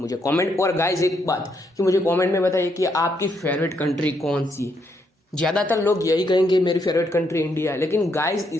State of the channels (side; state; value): both; normal; correlation 0.76